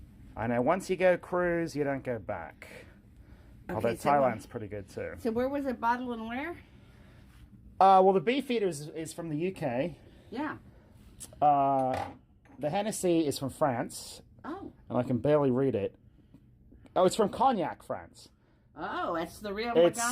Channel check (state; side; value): identical; both; correlation 1.00